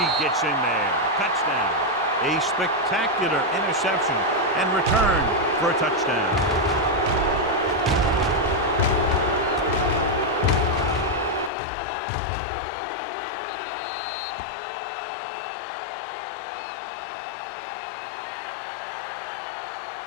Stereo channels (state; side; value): drops out; right; at 11.5 s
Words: gets in there. Touchdown. A spectacular interception and return for a touchdown.